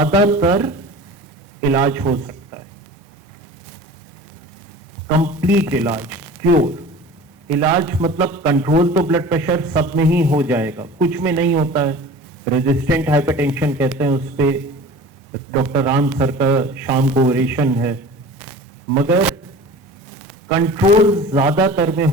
इलाज हो सकता है। कंप्लीट इलाज, क्योर। इलाज मतलब कंट्रोल तो ब्लड प्रेशर सब में ही हो जाएगा, कुछ में नहीं होता है। रेजिस्टेंट हाइपरटेंशन कहते हैं, उस पे डॉक्टर राम सर का शाम को ओरेशन है, मगर कंट्रोल ज्यादातर में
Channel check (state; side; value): normal; both; correlation 0.40